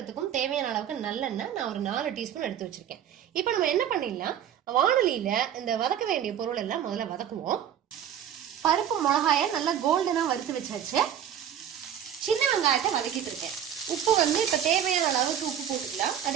தேவையான அளவுக்கு நல்லெண்ணெய் நான் ஒரு 4 டீஸ்பூன் எடுத்து வச்சிருக்கேன். இப்ப நம்ம என்ன பண்ணிடலாம், வானொலியில இந்த வதக்க வேண்டிய பொருள் எல்லாம் முதல்ல வதக்குவோம். பருப்பு மிளகாய நல்லா கோல்டனா வறுத்து வச்சாச்சு. சின்ன வெங்காயத்தை வதக்கிட்டு இருக்கேன். உப்பு இப்ப தேவையான அளவுக்கு உப்பு போட்டுக்கலாம்.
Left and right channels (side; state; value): left; quieter; 9.6 dB